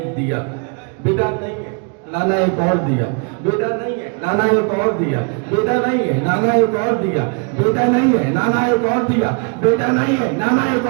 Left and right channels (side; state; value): left; quieter; 36.6 dB